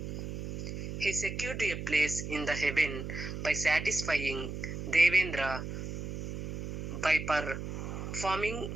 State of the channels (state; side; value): noise; right; hum, 6 dB below the sound